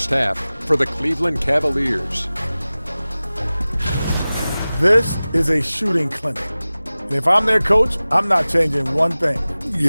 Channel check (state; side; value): inverted; both; correlation -0.98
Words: half for the Cleveland Cavaliers. This is a shooting clinic. And if I'm their coach, I'm not changing one thing.